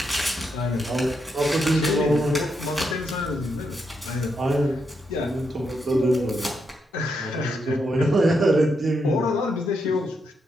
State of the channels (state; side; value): normal; both; correlation 0.81